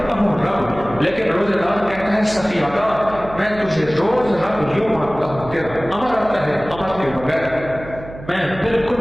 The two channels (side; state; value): right; noise; hum, 15 dB below the sound